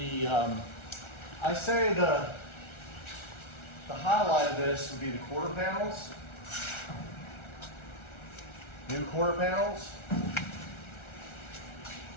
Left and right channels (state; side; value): late; right; 1.4 ms